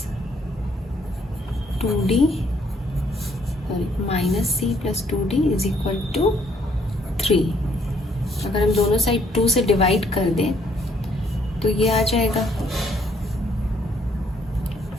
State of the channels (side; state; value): both; normal; correlation 0.67